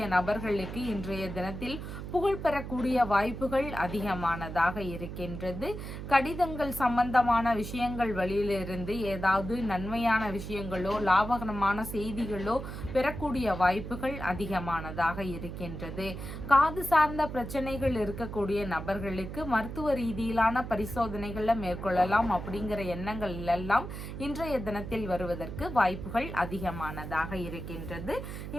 நபர்களுக்கு இன்றைய தினத்தில் புகழ் பெறக்கூடிய வாய்ப்புகள் அதிகமானதாக இருக்கின்றது. கடிதங்கள் சம்பந்தமான விஷயங்கள் வழியிலிருந்து ஏதாவது நன்மையான விஷயங்களோ லாபகரமான செய்திகளோ பெறக்கூடிய வாய்ப்புகள் அதிகமானதாக இருக்கின்றது. காது சார்ந்த பிரச்சனைகள் இருக்கக்கூடிய நபர்களுக்கு மருத்துவ ரீதியிலான பரிசோதனைகளை மேற்கொள்ளலாம் அப்படிங்கிற எண்ணங்கள் எல்லாம் இன்றைய தினத்தில் வருவதற்கு வாய்ப்புகள் அதிகமானதாக இருக்கின்றது.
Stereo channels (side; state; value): right; noise; hum, 8 dB below the sound